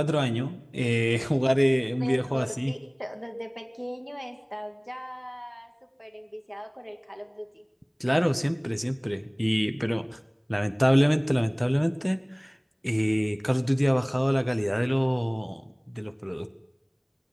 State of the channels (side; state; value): both; identical; correlation 1.00